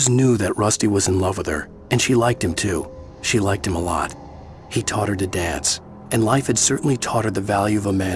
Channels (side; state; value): both; identical; correlation 1.00